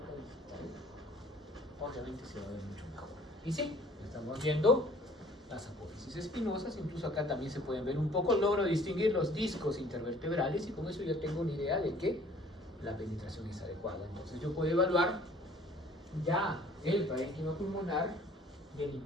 digital, obviamente se va a ver mucho mejor. Y sí, estamos viendo las apófisis espinosas, incluso acá también se pueden ver un poco, logro distinguir los discos intervertebrales y con eso ya tengo una idea de que la penetración es adecuada. Entonces yo puedo evaluar ya el parénquima pulmonar y el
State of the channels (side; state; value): both; normal; correlation 0.54